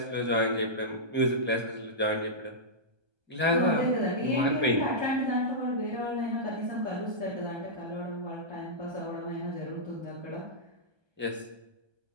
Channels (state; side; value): late; left; 1.3 ms